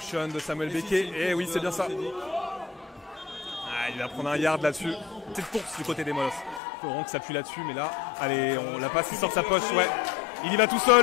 de Samuel Becquet. Et oui, c'est bien ça. Ah, il va prendre un yard là-dessus. Petite course du côté des Molos. Il faut vraiment que ça appuie là-dessus, mais là, allez, on la passe, il sort de sa poche, ouais. Il y va tout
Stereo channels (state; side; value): drops out; right; at 6.6 s